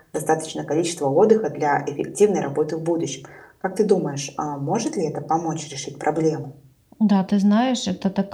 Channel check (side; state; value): both; identical; correlation 1.00